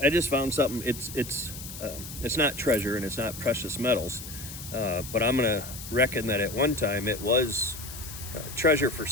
just found something. It's not treasure and it's not precious metals, but I'm gonna reckon that at one time it was treasure for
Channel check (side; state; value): left; noise; hiss, 11 dB below the sound